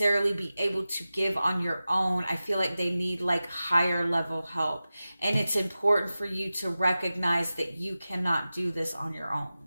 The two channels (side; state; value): both; inverted; correlation -0.95